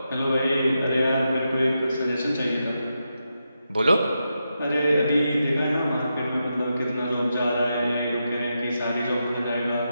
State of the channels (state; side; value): inverted; both; correlation -0.86